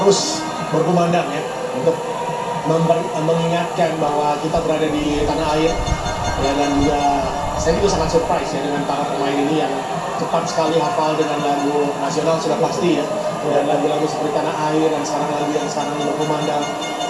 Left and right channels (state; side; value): identical; both; correlation 1.00